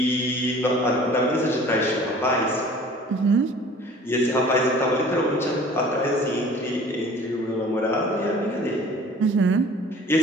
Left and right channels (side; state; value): both; normal; correlation 0.47